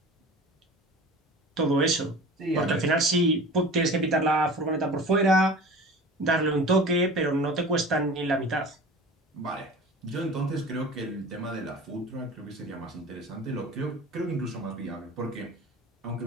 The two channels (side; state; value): both; normal; correlation 0.39